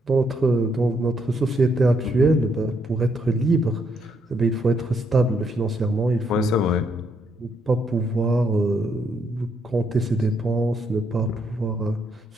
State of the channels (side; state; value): both; normal; correlation 0.75